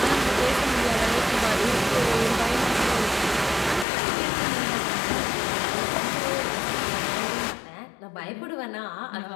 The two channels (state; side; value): drops out; right; at 3.9 s